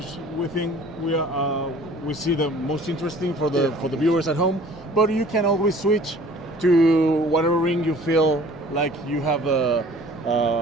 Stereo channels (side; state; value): both; normal; correlation 0.50